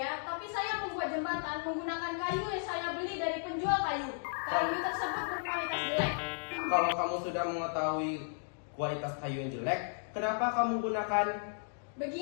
tapi saya membuat jembatan menggunakan kayu yang saya beli dari penjual kayu. Kayu tersebut berkualitas jelek. Kalau kamu sudah mengetahui kualitas kayu yang jelek, kenapa kamu gunakan?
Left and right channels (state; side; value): silent; right; digital silence